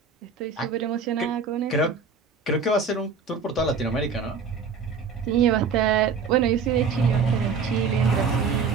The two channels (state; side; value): quieter; left; 5.3 dB